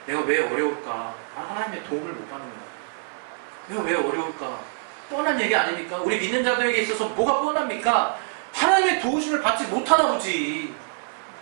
내가 왜 어려울까? 하나님의 도움을 못 받는 거예요. 내가 왜 어려울까? 뻔한 얘기 아닙니까? 우리 믿는 자들에게 있어서 뭐가 뻔합니까? 하나님의 도우심을 받지 못하나 보지.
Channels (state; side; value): silent; left; 58 dB below the other